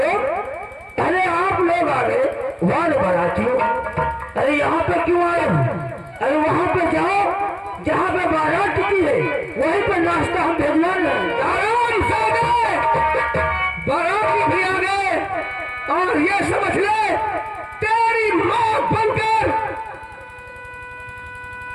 अरे आप लोग आ गए वाले बारातियों। अरे यहाँ पे क्यों आए हो? अरे वहाँ पे जाओ जहाँ पे बारात टिकी है, वहीं पे नाश्ता हम भेजवा लें। आराम से गए, बाराती भी आ गए, और ये समझ ले तेरी माँ बनकर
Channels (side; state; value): both; identical; correlation 1.00